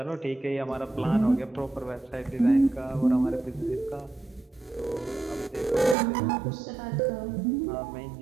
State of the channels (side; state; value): left; drops out; at 6.0 s